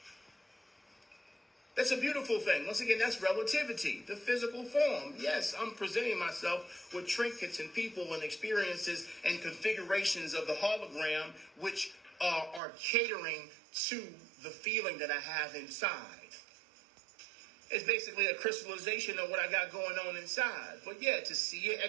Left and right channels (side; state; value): left; drops out; at 12.6 s